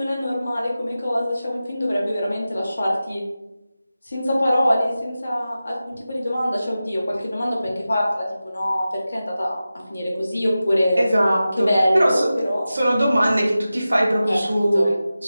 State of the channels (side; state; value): both; inverted; correlation -0.94